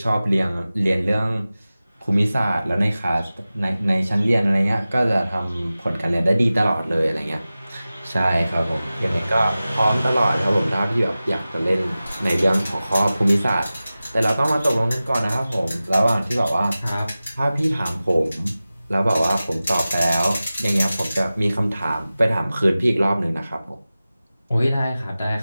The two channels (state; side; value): inverted; both; correlation -0.96